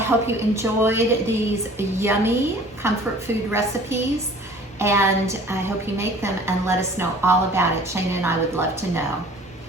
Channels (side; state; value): both; normal; correlation 0.48